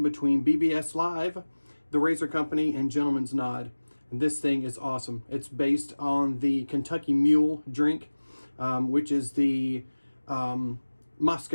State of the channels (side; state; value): both; inverted; correlation -1.00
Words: between BBS.Live, the Razor Company, and Gentleman's Nod. And this thing is awesome. It's based on the Kentucky Mule drink, which is the